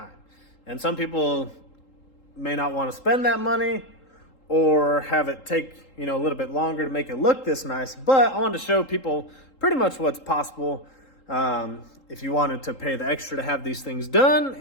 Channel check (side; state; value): right; late; 3.8 ms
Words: And some people may not want to spend that money or have it take, a little bit longer to make it look this nice. But I wanted to show people pretty much what's possible if you wanted to pay the extra to have these things done